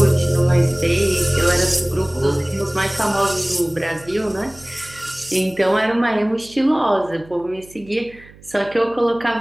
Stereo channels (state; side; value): noise; right; hum, 23 dB below the sound